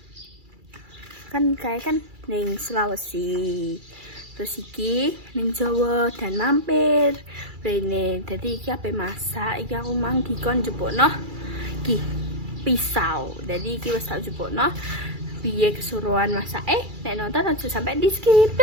Kan ning Sulawesi, terus iki ning Jawa dan mampir rene. Dadi iki ape masak, iki aku mang dikon njupukno iki pisau. Dadi iki wis tak njupukno piye kesuruhan masak. Nek nonton aja sampai di skip.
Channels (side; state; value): left; late; 2.3 ms